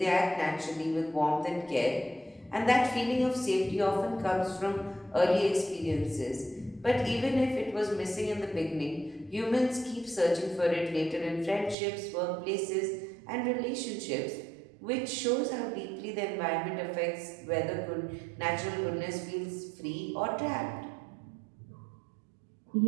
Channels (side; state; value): left; drops out; at 11.8 s